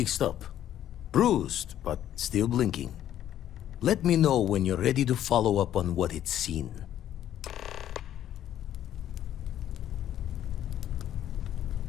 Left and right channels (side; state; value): right; quieter; 11.4 dB